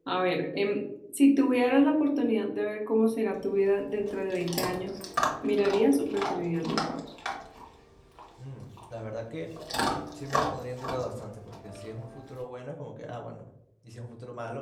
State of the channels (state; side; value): identical; both; correlation 1.00